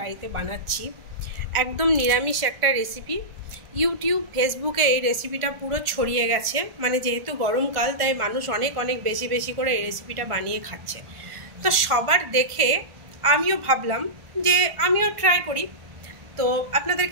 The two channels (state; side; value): late; left; 1.4 ms